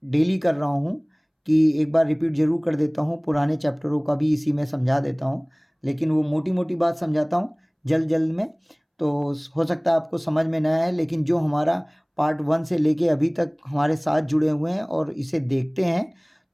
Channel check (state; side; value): identical; both; correlation 1.00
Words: डेली कर रहा हूँ कि एक बार रिपीट ज़रूर कर देता हूँ, पुराने चैप्टरों का भी इसी में समझा देता हूँ, लेकिन वो मोटी मोटी बात समझाता हूँ जल्द जल्द में, तो हो सकता है आपको समझ में ना आए। लेकिन जो हमारा पार्ट 1 से लेके अभी तक हमारे साथ जुड़े हुए हैं और इसे देखते हैं,